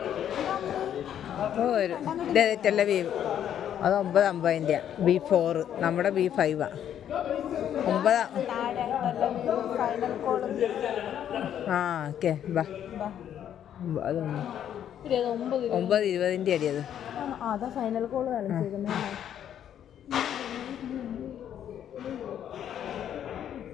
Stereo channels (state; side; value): quieter; right; 9.9 dB